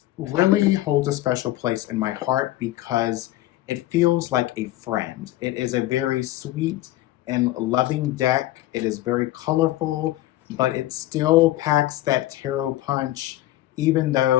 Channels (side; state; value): right; quieter; 15.7 dB